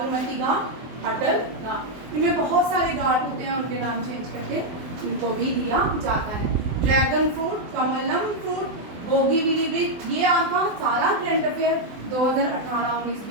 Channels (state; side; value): late; left; 24 ms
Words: घाट, अटल घाट, इनमें बहुत सारे घाट होते हैं, उनके नाम चेंज करके इनको भी दिया जाता है। Dragon fruit, Kamalam fruit, Bogibeel bridge, ये आपका सारा करंट अफेयर 2018, 19,